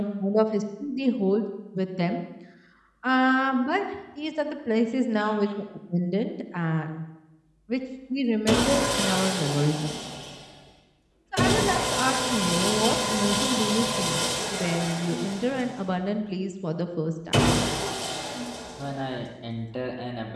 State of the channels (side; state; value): both; identical; correlation 1.00